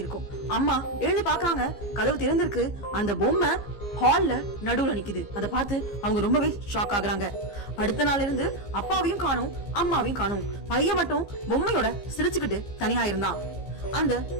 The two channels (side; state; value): right; late; 15 ms